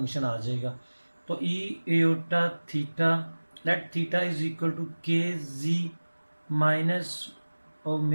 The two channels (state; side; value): inverted; both; correlation -1.00